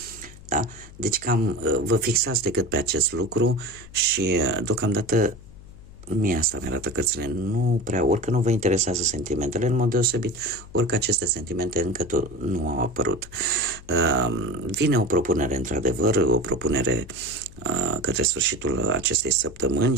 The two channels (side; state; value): left; noise; hum, 19 dB below the sound